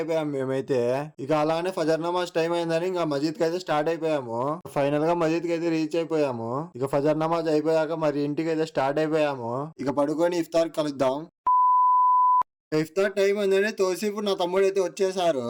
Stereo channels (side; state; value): both; identical; correlation 1.00